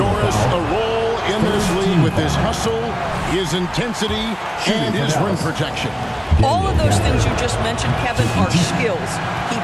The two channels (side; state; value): both; identical; correlation 1.00